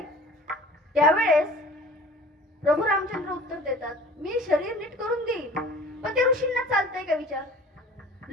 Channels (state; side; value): normal; both; correlation 0.46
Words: त्यावेळेस प्रभू रामचंद्र उत्तर देतात, मी शरीर नीट करून देईल, पण ते ऋषींना चालतंय का विचार?